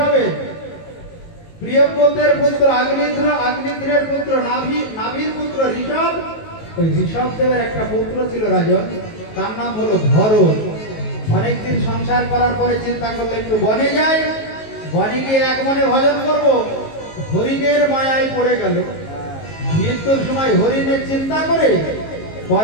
প্রিয়ব্রতের পুত্র আগ্নিধ্র, আগ্নিধ্রের পুত্র নাভি, নাভির পুত্র ঋষভ। ওই ঋষভ দেবের একটা পুত্র ছিল রাজন, তার নাম হলো ভরত। অনেকদিন সংসার করার পরে চিন্তা করলে একটু বনে যায়, বনে গিয়ে এক মনে ভজন করব। হরিণের মায়ায় পড়ে গেল। মৃত্যুর সময় হরিণের চিন্তা করে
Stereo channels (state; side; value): late; right; 19 ms